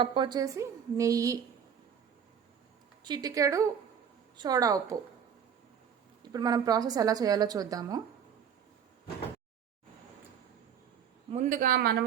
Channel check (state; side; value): quieter; left; 7.9 dB